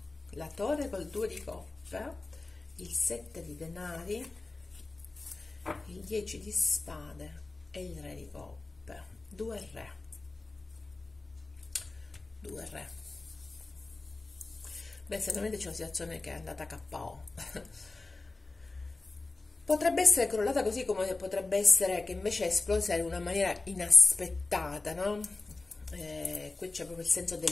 torre col 2 di coppe, il 7 di denari, il 10 di spade e il re di coppe. 2 re. Beh, sicuramente c'è una situazione che è andata a KO. Potrebbe essere crollata, così come potrebbe essere che invece è esplosa in una maniera inaspettata, no? Qui c'è proprio il senso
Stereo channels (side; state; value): right; quieter; 3.4 dB